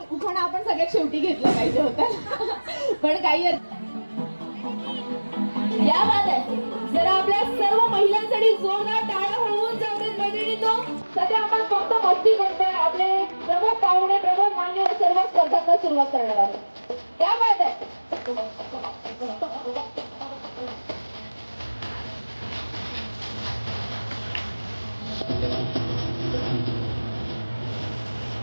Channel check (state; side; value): inverted; both; correlation -1.00